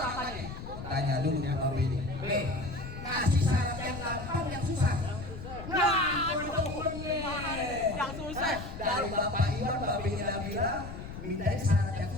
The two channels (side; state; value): left; noise; rumble, 10 dB below the sound